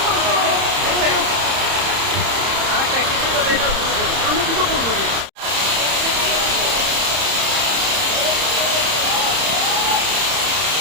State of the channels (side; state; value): left; late; 30 ms